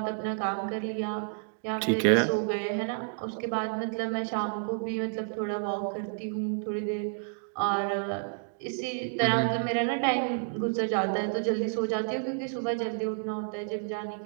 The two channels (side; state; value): left; silent; digital silence